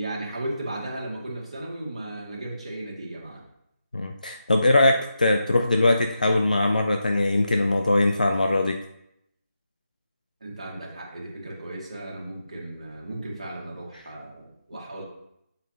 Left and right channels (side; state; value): both; inverted; correlation -0.87